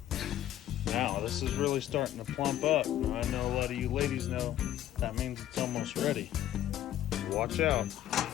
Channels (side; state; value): right; quieter; 12.2 dB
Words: Now, this is really starting to plump up. I know a lot of you ladies know that means it's almost ready. Watch out.